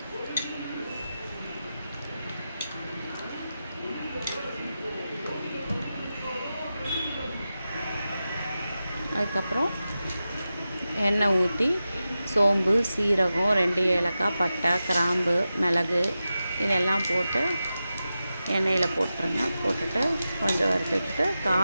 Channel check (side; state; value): both; inverted; correlation -0.92